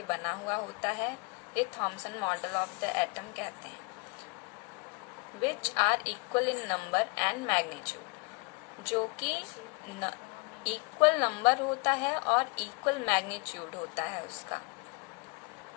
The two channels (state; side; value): quieter; right; 29.7 dB